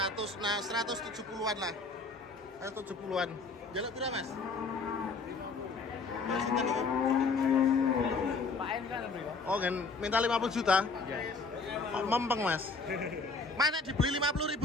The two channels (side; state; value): right; quieter; 4.0 dB